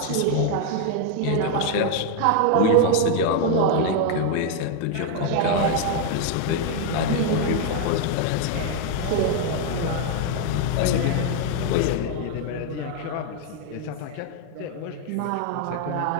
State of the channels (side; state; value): both; different; correlation 0.00